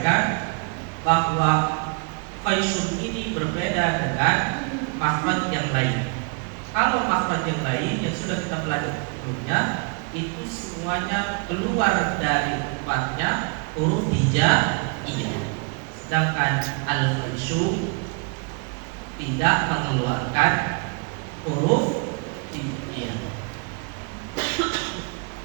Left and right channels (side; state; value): left; quieter; 35.0 dB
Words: bahwa Khaysum ini berbeda dengan makhraj yang lain. Kalau makhraj yang lain yang sudah kita pelajari sebelumnya, itu semuanya keluar dari tempatnya huruf hijaiyah. Sedangkan al-Khaysum tidak mengeluarkan huruf hijaiyah.